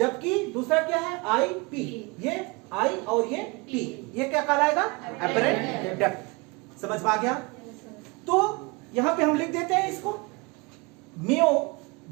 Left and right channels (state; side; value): quieter; left; 27.2 dB